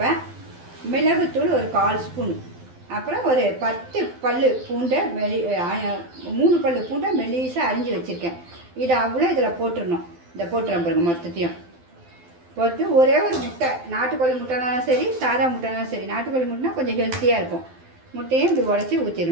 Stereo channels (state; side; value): late; left; 12 ms